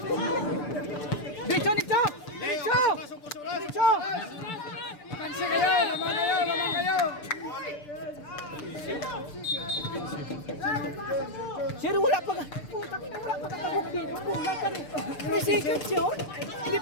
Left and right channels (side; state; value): right; late; 6.8 ms